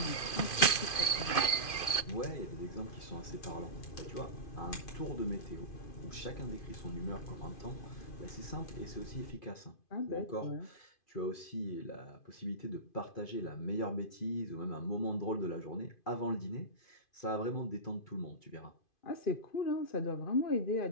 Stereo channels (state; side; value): late; right; 2.5 ms